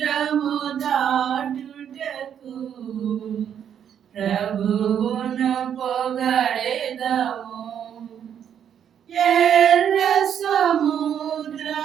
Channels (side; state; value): left; quieter; 8.9 dB